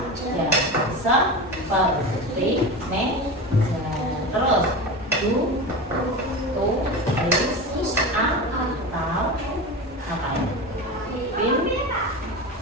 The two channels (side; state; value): both; normal; correlation 0.26